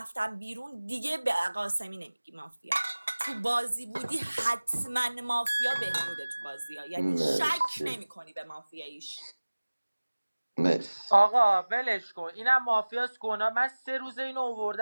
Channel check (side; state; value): both; inverted; correlation -1.00